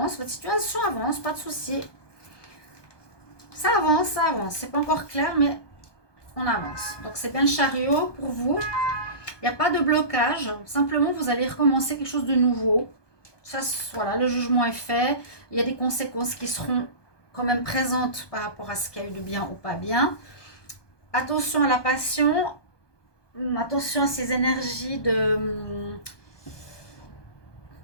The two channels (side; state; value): right; late; 1.2 ms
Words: Votre situation avance, pas de souci. Ça avance, ça avance. C'est pas encore clair, mais on avance. Donc, c'est bien le chariot pour vous. Il n'y a pas de blocage. Simplement, vous allez recommencer quelque chose de nouveau. Ça, voilà, le jugement est fait. Il y a des conséquences qui seront quand même présentes par rapport à ce qu'il y a eu de bien ou pas bien. Attention à la passion. Attention à ces énergies de...